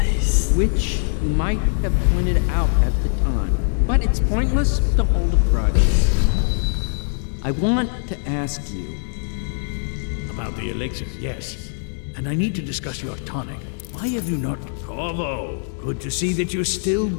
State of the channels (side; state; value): right; silent; 64 dB below the other